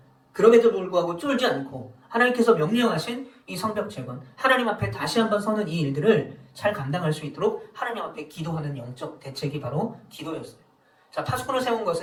그럼에도 불구하고 쫄지 않고 하나님께서 명령하신 이 성벽 재건, 하나님 앞에 다시 한번 서는 이 일들을 잘 감당할 수 있도록 하나님 앞에 기도하는 영적 대책이 바로 기도였어요. 자, 파수꾼을 세운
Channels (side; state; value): both; identical; correlation 1.00